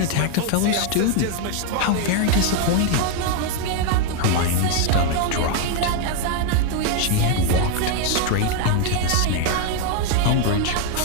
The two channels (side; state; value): both; different; correlation 0.00